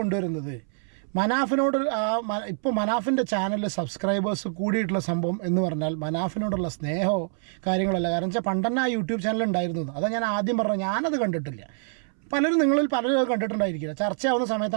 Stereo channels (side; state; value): left; silent; 61 dB below the other